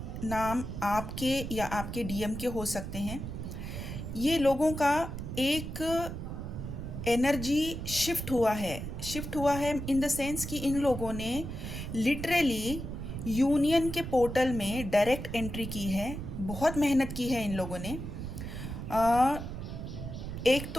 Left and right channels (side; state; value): right; noise; rumble, 7 dB below the sound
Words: नाम आपके या आपके डीएम के हो सकते हैं। ये लोगों का एक एनर्जी शिफ्ट हुआ है इन द सेंस कि इन लोगों ने लिटरली यूनियन के पोर्टल में डायरेक्ट एंट्री की है। बहुत मेहनत की है इन लोगों ने। एक